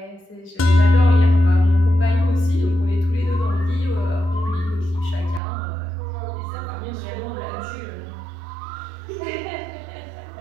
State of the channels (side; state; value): left; drops out; at 5.4 s